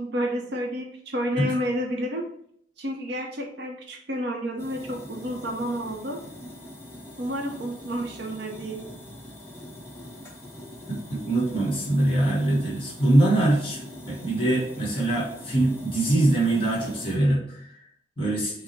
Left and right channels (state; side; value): normal; both; correlation 0.80